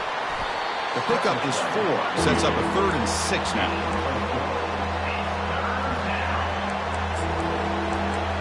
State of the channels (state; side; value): identical; both; correlation 1.00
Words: The pickup is 4. Sets up a 3rd and 6 now.